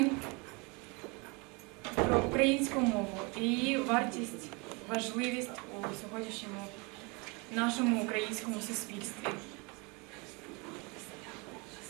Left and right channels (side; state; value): left; quieter; 29.3 dB